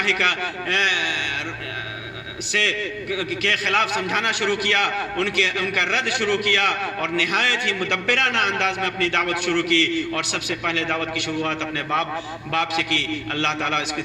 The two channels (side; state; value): both; identical; correlation 1.00